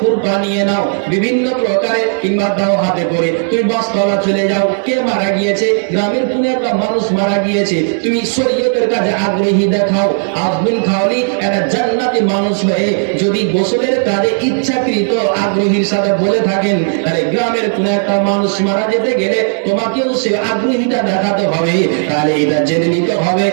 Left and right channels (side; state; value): left; silent; digital silence